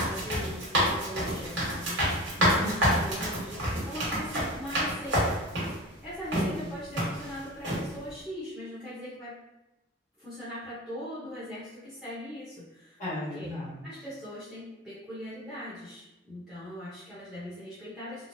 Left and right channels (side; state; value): both; normal; correlation 0.29